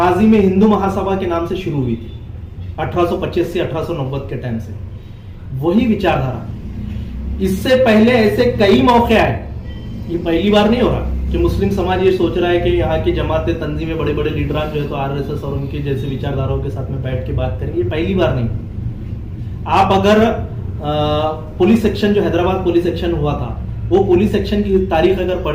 में हिंदू महासभा के नाम से शुरू हुई थी, 1825 से 1890 के टाइम से वही विचारधारा। इससे पहले ऐसे कई मौके आए, ये पहली बार नहीं हो रहा कि मुस्लिम समाज ये सोच रहा है कि यहाँ की जमातें, तंजीमें, बड़े बड़े लीडरान जो है तो आरएसएस और उनके जैसे विचारधाराओं के साथ में बैठ के बात करेंगे, ये पहली बार नहीं। आप अगर पुलिस सेक्शन, जो हैदराबाद पुलिस सेक्शन हुआ था, वो पुलिस सेक्शन की तारीख अगर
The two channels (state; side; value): identical; both; correlation 1.00